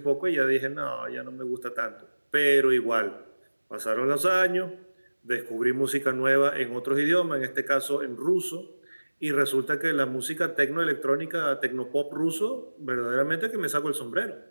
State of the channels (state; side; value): inverted; both; correlation -1.00